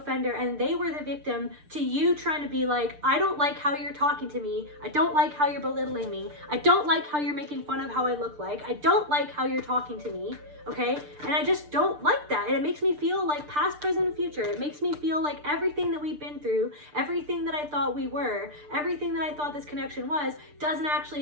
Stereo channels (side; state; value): left; late; 6.7 ms